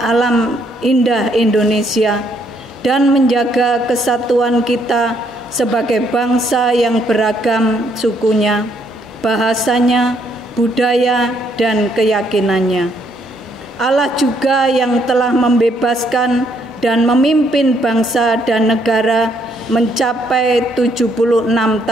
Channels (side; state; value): both; normal; correlation 0.70